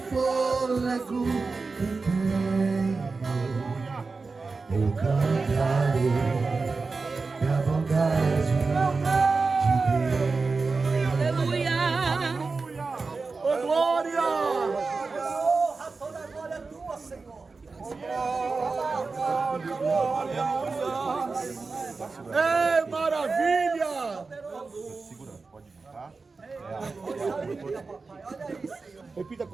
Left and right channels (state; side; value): quieter; left; 4.2 dB